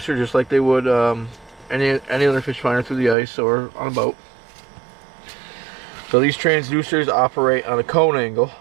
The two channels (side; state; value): left; drops out; at 3.2 s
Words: just like they would any other fish finder through the ice or on a boat. So these transducers operate on a cone angle,